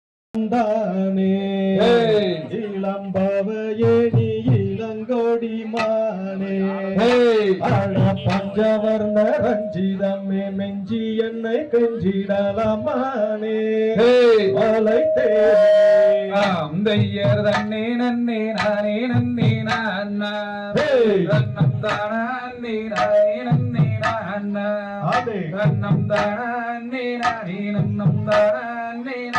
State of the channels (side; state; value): both; identical; correlation 1.00